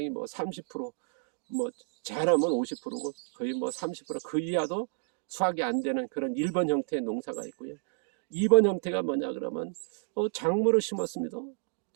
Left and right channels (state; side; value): silent; left; 57 dB below the other